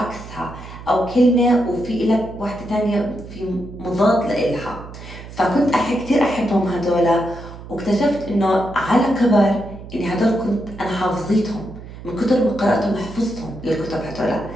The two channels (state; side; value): noise; right; hum, 14 dB below the sound